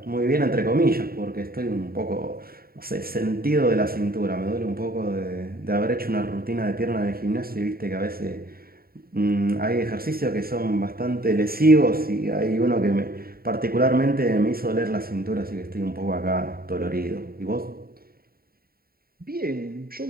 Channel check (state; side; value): late; left; 0.43 ms